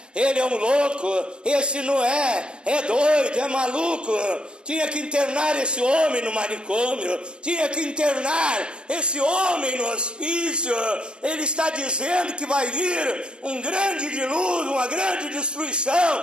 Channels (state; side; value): late; left; 0.055 ms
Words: ele é um louco, esse Noé é doido, é maluco, tinha que internar esse homem no manicômio, tinha que internar esse homem no hospício. Ele está dizendo que vai vir um grande dilúvio, uma grande